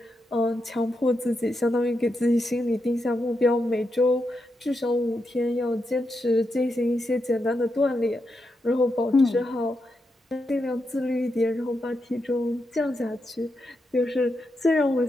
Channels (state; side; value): normal; both; correlation 0.85